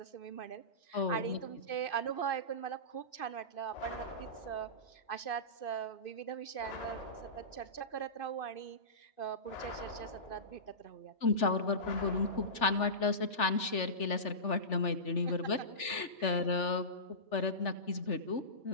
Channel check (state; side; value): late; right; 3.4 ms